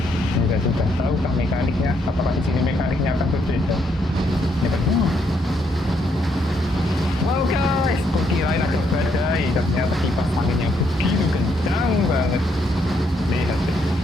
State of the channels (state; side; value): normal; both; correlation 0.74